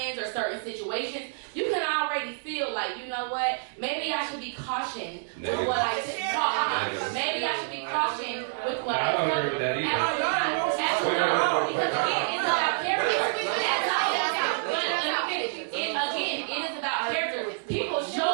or certain situations, you can already feel like, you know what, maybe I should be cautioned with what I talk. Maybe I should be cautioned with what I tell. I don't agree with that either. Absolutely. Because again, it's about character. Again, it is about character. People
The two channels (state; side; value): silent; left; digital silence